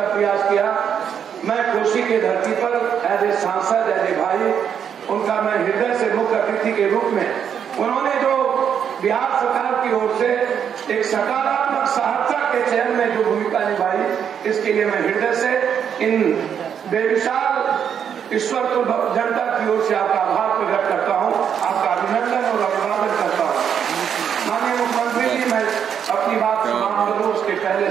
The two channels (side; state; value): left; quieter; 8.1 dB